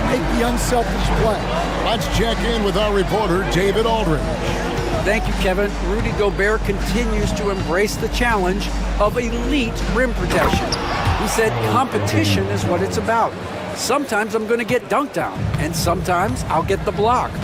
make the unselfish play. Let's check in with our reporter, David Aldridge. Thank you, Kevin. Rudy Gobert continues to embrace the challenge of elite rim protection. He said competition is what it's about. Sometimes I'm going to get dunked on, and sometimes I'll get the block.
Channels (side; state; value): both; identical; correlation 1.00